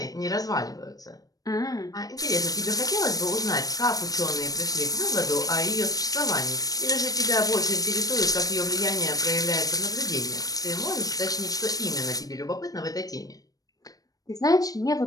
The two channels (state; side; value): late; right; 0.18 ms